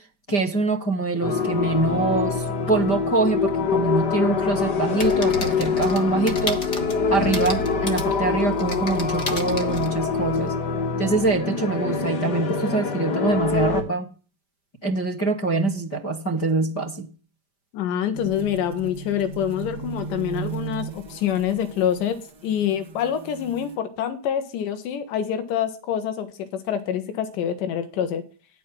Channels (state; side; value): late; right; 5.1 ms